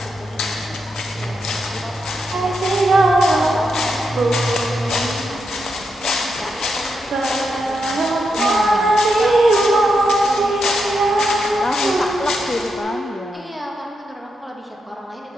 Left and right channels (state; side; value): normal; both; correlation 0.84